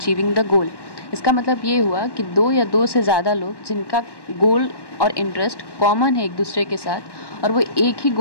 the goal. इसका मतलब ये हुआ कि 2 या 2 से ज़्यादा लोग जिनका गोल और इंटरेस्ट कॉमन है एक दूसरे के साथ और वो एक ही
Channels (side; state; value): right; late; 1.1 ms